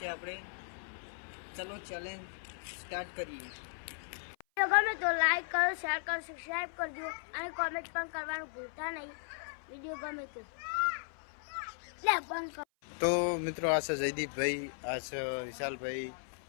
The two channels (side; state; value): right; silent; 53 dB below the other